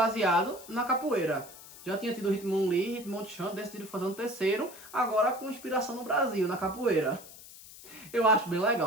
na capoeira. Já tinha tido o Hitmonlee, Hitmonchan, decidiram fazer um terceiro. Agora com inspiração no Brasil, na capoeira. Eu acho bem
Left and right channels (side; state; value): left; noise; hiss, 18 dB below the sound